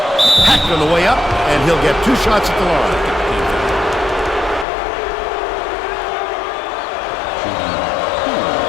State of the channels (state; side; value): drops out; right; at 4.7 s